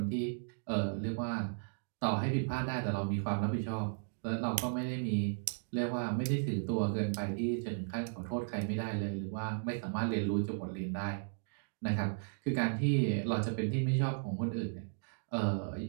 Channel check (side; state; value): left; silent; digital silence